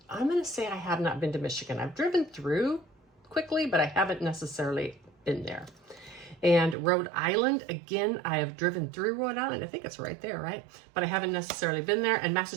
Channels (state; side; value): drops out; left; at 6.8 s